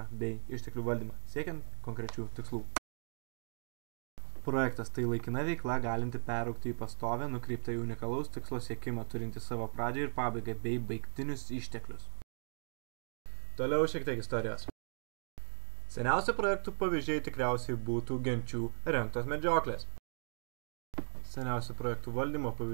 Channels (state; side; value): silent; left; digital silence